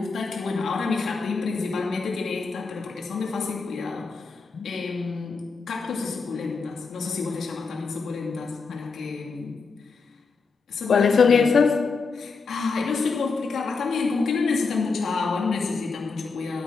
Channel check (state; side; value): quieter; right; 4.6 dB